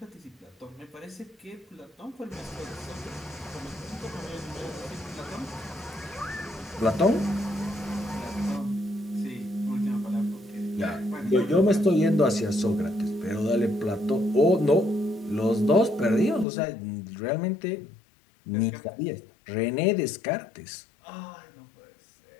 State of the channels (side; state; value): right; drops out; at 16.4 s